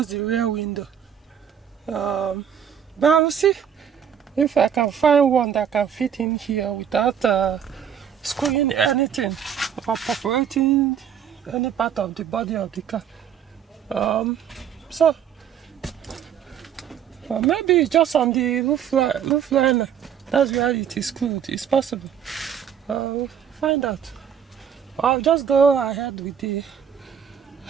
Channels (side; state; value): left; quieter; 8.6 dB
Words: the rear window. But I will see if I can find one that can fit in here without screwing anything or perforating any part of the body of the car. So maybe just on the roof liner, that's where it is screwed. It's possible. We'll find out. I'll just go ahead with the.